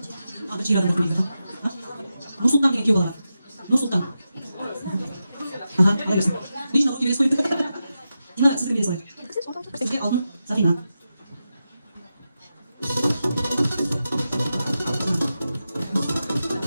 жер адам өтмейді. Нұрсұлтан деген күйеу бала бар. Нұрсұлтан. Ала берсін. Лично ол күйеуес қойды. Дина сіздің бересі олай. Сізге алтын Сафина.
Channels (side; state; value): both; inverted; correlation -0.90